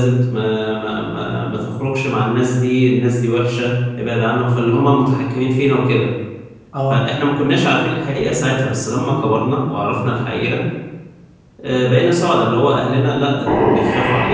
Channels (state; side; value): identical; both; correlation 1.00